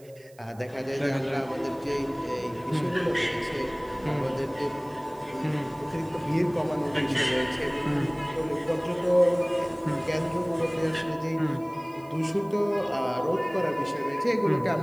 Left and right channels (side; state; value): right; noise; hiss, 27 dB below the sound